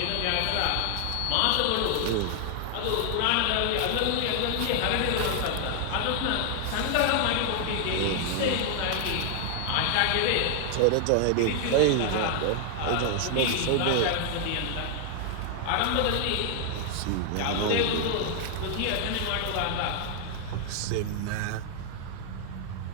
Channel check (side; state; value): both; different; correlation 0.00